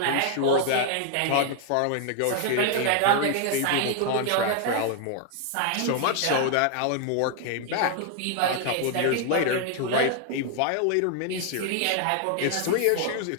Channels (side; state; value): both; different; correlation 0.00